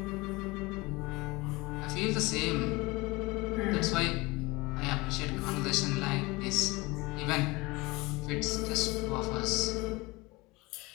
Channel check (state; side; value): quieter; right; 23.1 dB